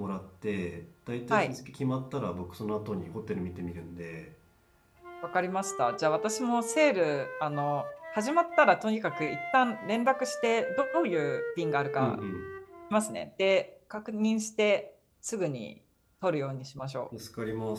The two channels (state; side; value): identical; both; correlation 1.00